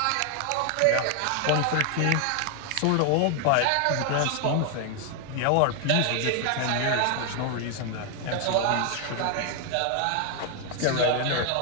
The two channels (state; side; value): different; both; correlation 0.00